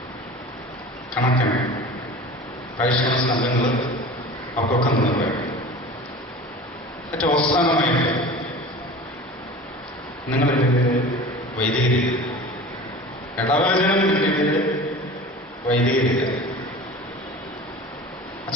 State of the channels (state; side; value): normal; both; correlation 0.37